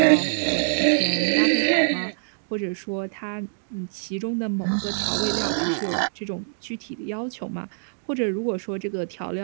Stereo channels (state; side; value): silent; left; digital silence